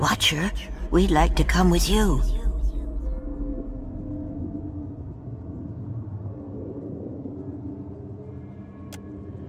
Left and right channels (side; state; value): both; identical; correlation 1.00